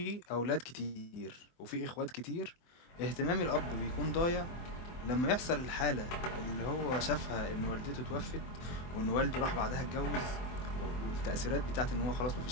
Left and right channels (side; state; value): right; late; 24 ms